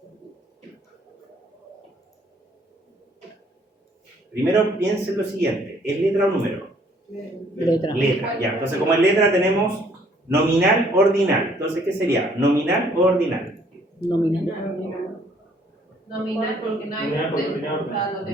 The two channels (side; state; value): both; normal; correlation 0.62